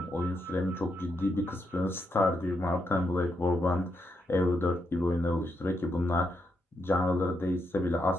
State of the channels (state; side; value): normal; both; correlation 0.81